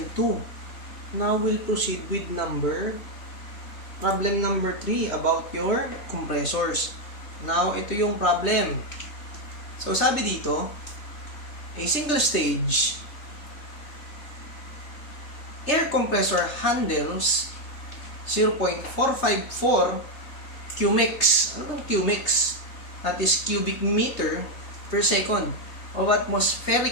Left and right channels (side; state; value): right; late; 3.3 ms